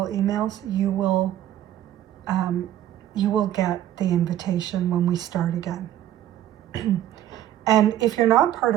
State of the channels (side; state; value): left; quieter; 12.1 dB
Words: emails, you will get the invitation when we start again. And if you're not part